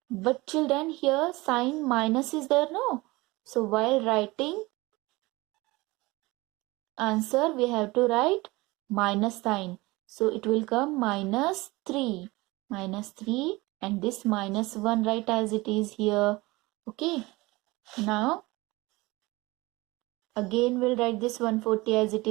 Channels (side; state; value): left; quieter; 22.0 dB